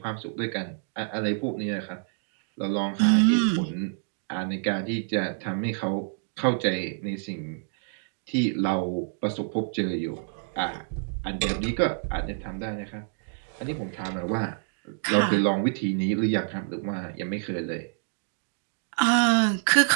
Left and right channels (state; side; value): silent; left; digital silence